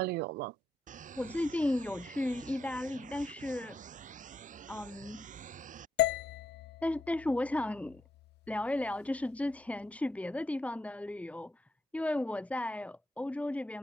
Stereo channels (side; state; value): both; normal; correlation 0.76